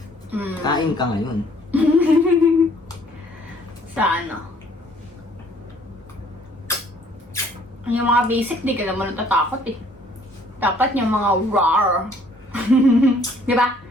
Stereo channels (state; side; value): normal; both; correlation 0.60